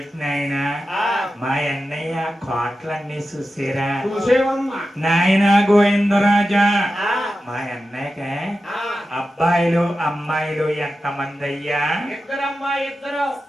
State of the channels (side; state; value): both; normal; correlation 0.92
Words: నాయనా మా అన్నయ్య కోట్లన్నీ చూసారా చూసేవమ్మా నాయన గోవిందరాజా మా అన్నయ్యక అబ్బాయిలు అమ్మాయిలు ఎంత మంది అయ్యా